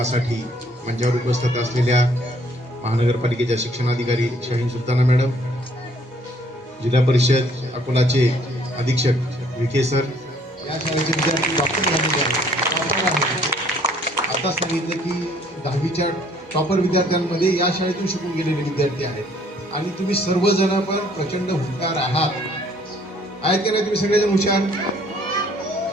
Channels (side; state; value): both; normal; correlation 0.61